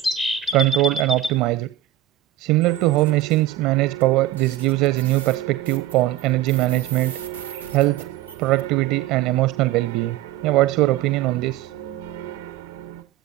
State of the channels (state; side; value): quieter; left; 13.5 dB